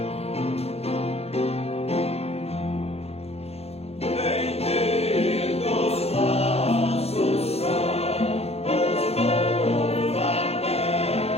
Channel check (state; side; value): late; right; 0.30 ms